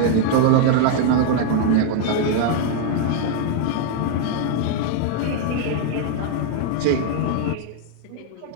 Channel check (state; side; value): different; both; correlation 0.00